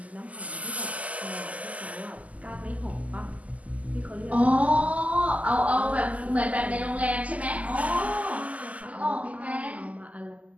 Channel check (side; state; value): left; late; 0.072 ms